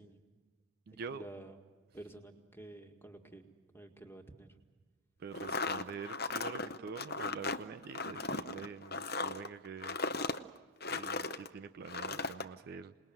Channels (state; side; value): normal; both; correlation -0.13